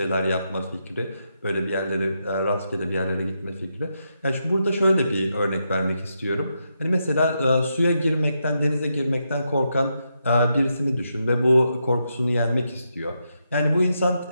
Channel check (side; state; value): both; inverted; correlation -0.83